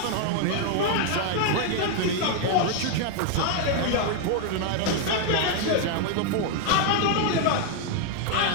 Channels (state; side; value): different; both; correlation 0.00